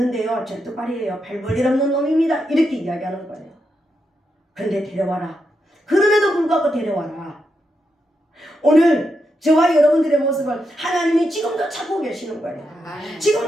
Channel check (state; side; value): normal; both; correlation 0.84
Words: 절뚝발이에요, 별볼일 없는 놈입니다, 이렇게 이야기하는 거예요. 근데 데려와라. 그럼에도 불구하고 데려와라. 오늘 저와 여러분들의 모습을 하나님이 지금도 찾고 계시는 거예요.